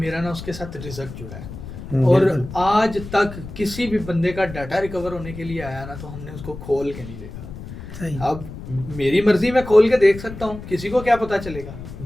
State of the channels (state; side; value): noise; left; rumble, 12 dB below the sound